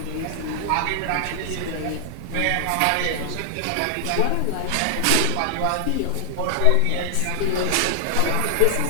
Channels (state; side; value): different; both; correlation 0.00